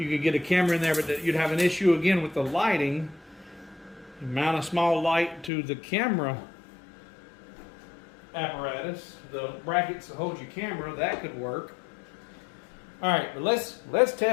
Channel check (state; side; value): drops out; right; at 5.5 s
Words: could get a camera in there, but you'd have an issue again with the lighting. You mount a small light to the camera apparatus, the brackets that hold your camera, that could work. All right, but let's